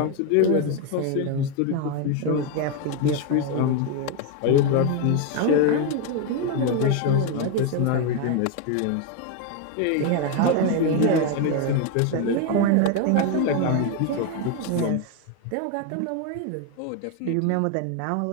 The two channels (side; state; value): both; different; correlation 0.01